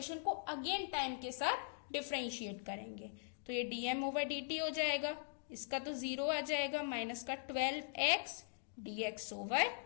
को अगेन टाइम के साथ डिफरेंशिएट करेंगे, तो ये डीएम ओवर डी टी हो जाएगा, इसका तो 0 आ जाएगा, माइनस का 12x dx over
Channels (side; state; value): right; silent; digital silence